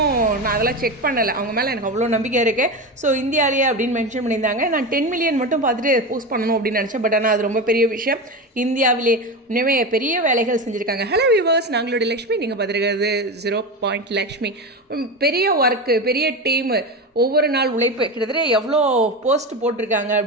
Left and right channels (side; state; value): both; normal; correlation 0.21